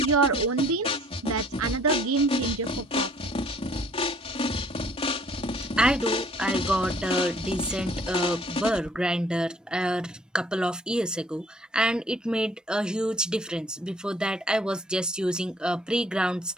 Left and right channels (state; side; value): normal; both; correlation 0.58